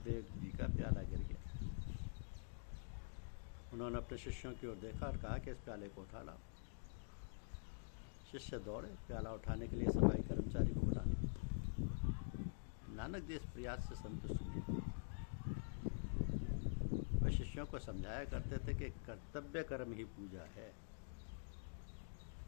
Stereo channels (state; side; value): silent; right; digital silence